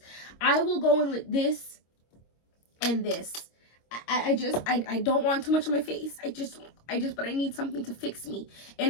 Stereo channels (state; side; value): late; right; 25 ms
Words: I will go in with this and this. I don't want too much on my face. But I need something to fix me.